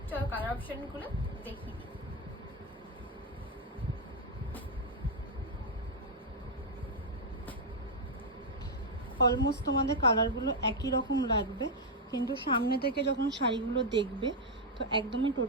চলো কালার অপশনগুলো দেখিয়ে দিই। অলমোস্ট তোমাদের কালারগুলো একই রকম লাগবে, কিন্তু সামনে থেকে যখন শাড়িগুলো দেখবে তো একদমই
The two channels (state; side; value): normal; both; correlation -0.01